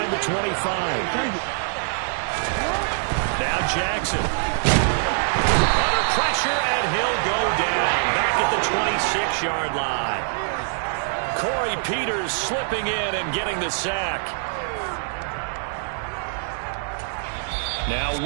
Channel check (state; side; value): silent; left; digital silence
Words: the 25. Now Jackson. Under pressure, and he'll go down back at the 26-yard line. Corey Peters slipping in and getting the sack. Now